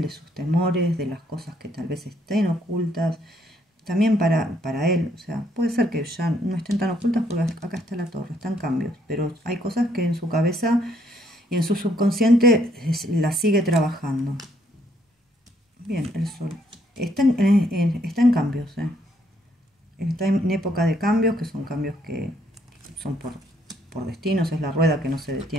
de sus temores, de las cosas que tal vez estén ocultas. También para él, o sea, puede ser que ya no estén tan ocultas porque acá está la torre, están cambios, pero hay cosas que en su cabeza y en su subconsciente las sigue trabajando. Bien, el sol. Está en cambios, está en época de cambios, que son cambios que son por destinos, es la rueda que no se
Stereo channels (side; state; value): both; normal; correlation 0.70